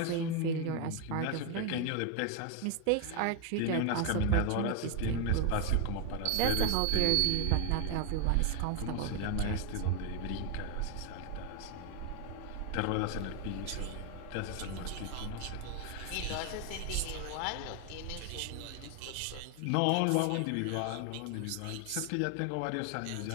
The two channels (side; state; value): both; different; correlation 0.01